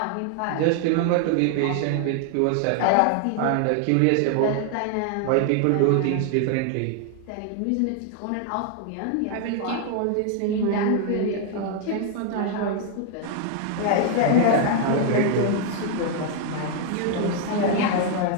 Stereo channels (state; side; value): different; both; correlation 0.00